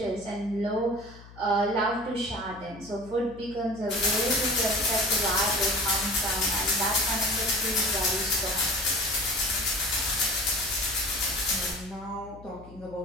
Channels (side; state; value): left; noise; hum, 19 dB below the sound